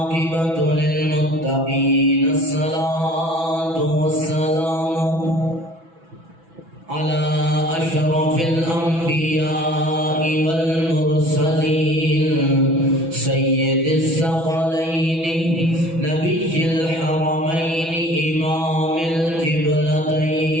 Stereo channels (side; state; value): left; late; 6.1 ms